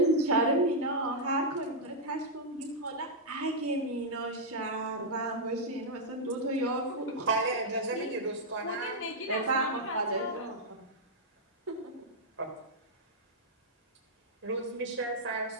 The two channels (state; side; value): normal; both; correlation -0.05